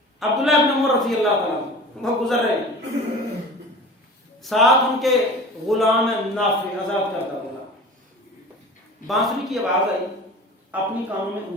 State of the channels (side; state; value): both; normal; correlation 0.38